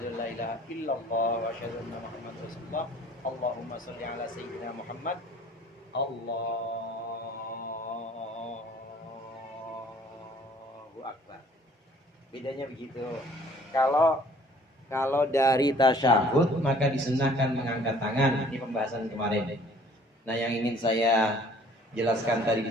an la ilaha illallah, wa asyhadu anna Muhammadar Rasulullah, Allahumma sholli ala Sayyidina Muhammad, Allahu Akbar. Bedanya begitu. Kalau dari tasyahud maka disunahkan mengangkat tangan. Ini pembahasan kemarin. Nah, yang ingin saya jelaskan tadi di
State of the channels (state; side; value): normal; both; correlation 0.55